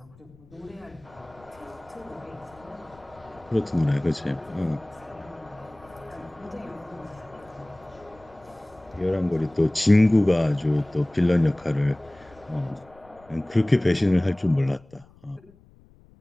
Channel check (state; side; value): noise; left; rumble, 27 dB below the sound